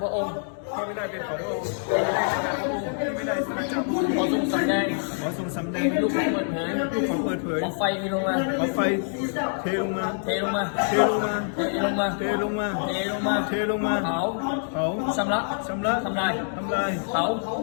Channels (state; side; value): silent; right; digital silence